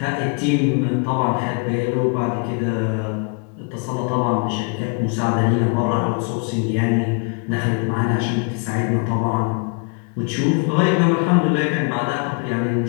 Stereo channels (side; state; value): right; quieter; 36.9 dB